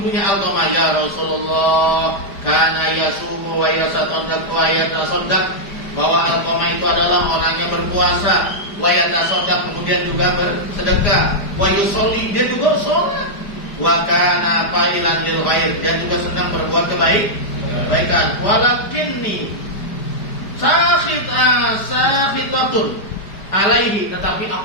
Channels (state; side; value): late; right; 4.9 ms